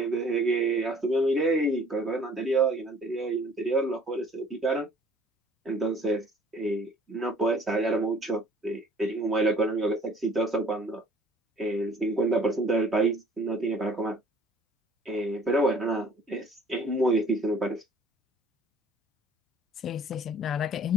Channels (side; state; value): both; normal; correlation 0.54